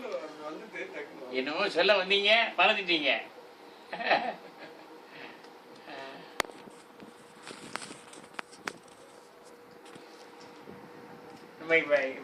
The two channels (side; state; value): both; identical; correlation 1.00